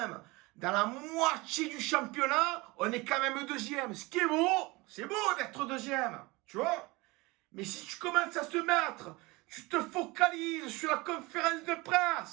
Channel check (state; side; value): quieter; left; 23.4 dB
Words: dans la moitié du championnat, on est quand même deuxième. Ce qui est beau, c'est beau d'être deuxième, tu vois. Mais si tu commences à te mettre, tu te focalises sur la conférence de